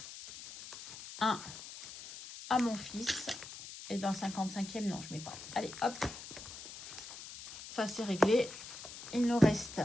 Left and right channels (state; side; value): noise; left; hiss, 12 dB below the sound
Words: Un à mon fils. Et dans le 55e, non, je mets pas. Allez, hop. Ça, c'est réglé. Il nous reste